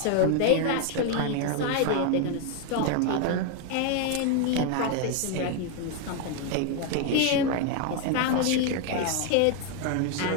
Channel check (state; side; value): different; both; correlation 0.00